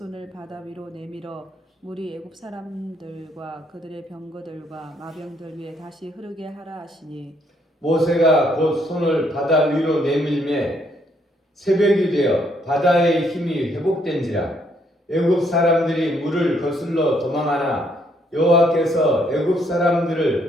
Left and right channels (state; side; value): normal; both; correlation 0.70